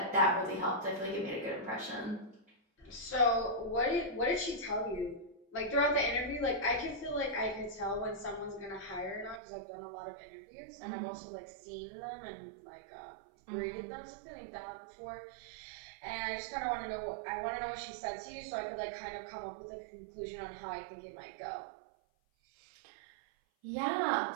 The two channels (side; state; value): left; drops out; at 9.4 s